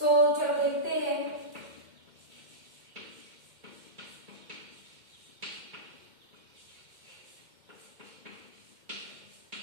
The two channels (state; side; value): late; left; 2.1 ms